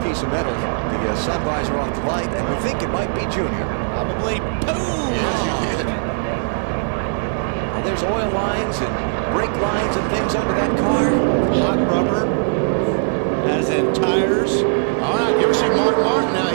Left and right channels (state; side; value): silent; left; 57 dB below the other